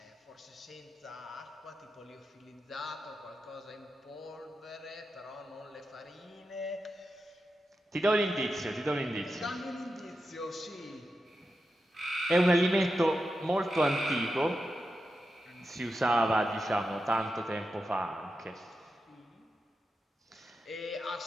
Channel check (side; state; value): both; normal; correlation 0.89